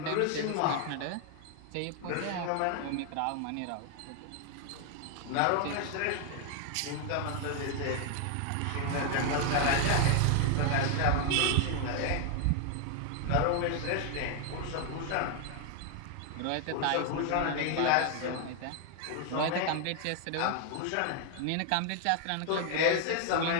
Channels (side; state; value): both; different; correlation 0.00